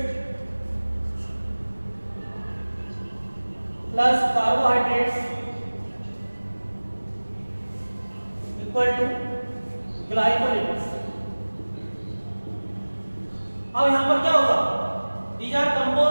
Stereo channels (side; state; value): both; inverted; correlation -1.00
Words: plus carbohydrates equal to glycolipids. अब यहां पर क्या होगा, these are